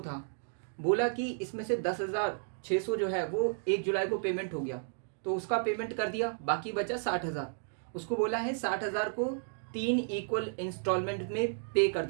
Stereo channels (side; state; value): left; silent; digital silence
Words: बोला कि इसमें से 10,600 जो है वो 1 जुलाई को पेमेंट हो गया, तो उसका पेमेंट कर दिया, बाकी बचा 60,000। उसको बोला है 60,000 को 3 इक्वल इंस्टॉलमेंट में पे कर